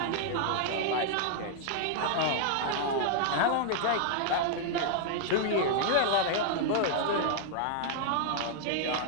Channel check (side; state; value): both; different; correlation 0.00